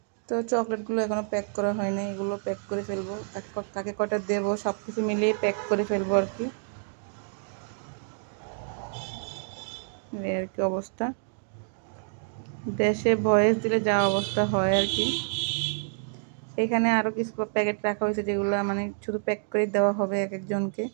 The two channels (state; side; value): silent; left; digital silence